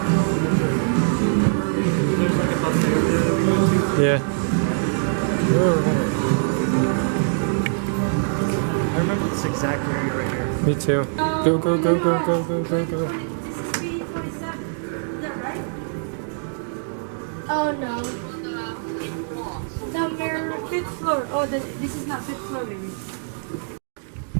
Yeah. I remember this exact area right here. Me too. Go, go, go, go, go, go, go, go. Oh no. Number 5th floor. Oh, this is not 5th floor, maybe.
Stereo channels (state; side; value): silent; left; digital silence